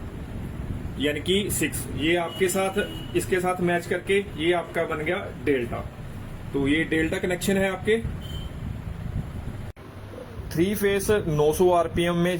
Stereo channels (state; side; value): identical; both; correlation 1.00